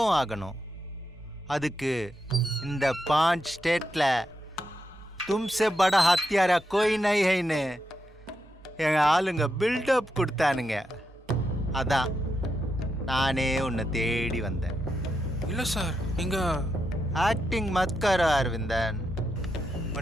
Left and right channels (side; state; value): both; normal; correlation 0.84